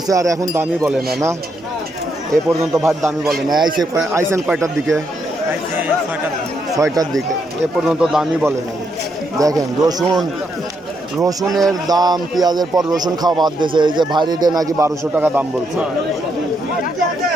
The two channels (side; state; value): both; normal; correlation 0.78